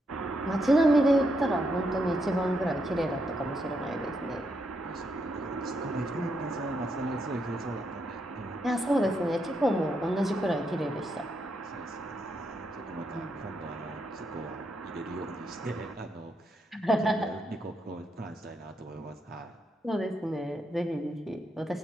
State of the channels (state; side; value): normal; both; correlation 0.80